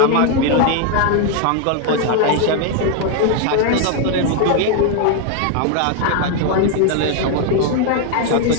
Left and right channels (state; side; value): different; both; correlation 0.00